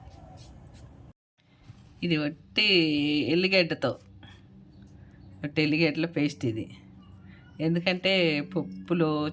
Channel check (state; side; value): identical; both; correlation 1.00